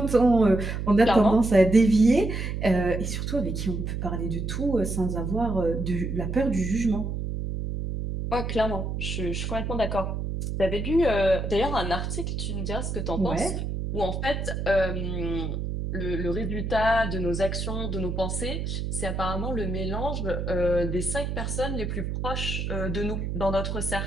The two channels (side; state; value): right; noise; hum, 3 dB below the sound